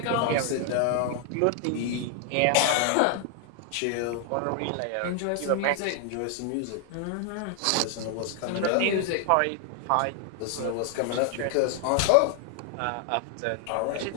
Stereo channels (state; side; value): different; both; correlation 0.00